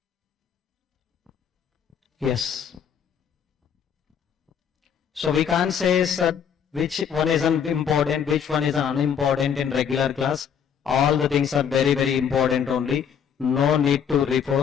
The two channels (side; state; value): right; quieter; 7.9 dB